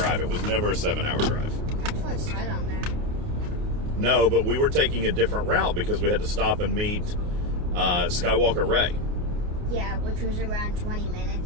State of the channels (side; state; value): left; late; 29 ms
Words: It was never a 7-hour drive. That's what it said on there. No, but we were taking a different route because we had to stop and meet Skywalker Ray. Yeah, which was around 20